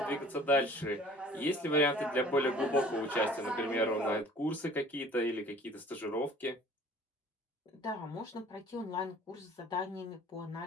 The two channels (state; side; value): normal; both; correlation 0.50